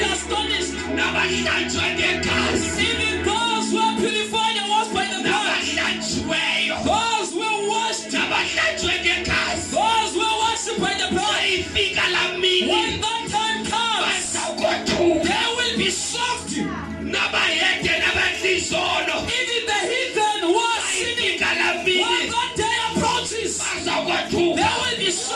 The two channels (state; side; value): identical; both; correlation 1.00